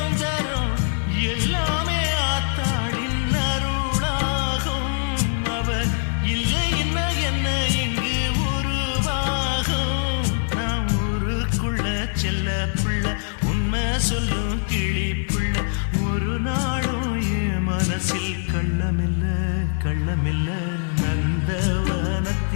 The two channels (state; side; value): silent; right; 63 dB below the other